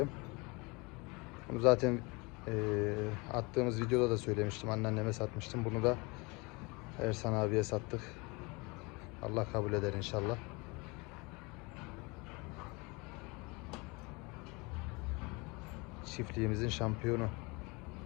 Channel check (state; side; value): quieter; right; 27.0 dB